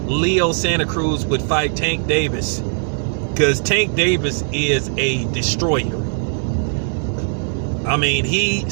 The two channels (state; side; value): silent; left; digital silence